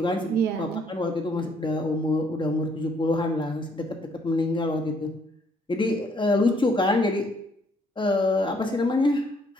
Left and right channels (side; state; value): both; normal; correlation 0.67